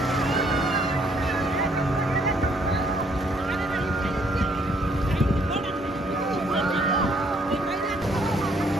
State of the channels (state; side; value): normal; both; correlation 0.67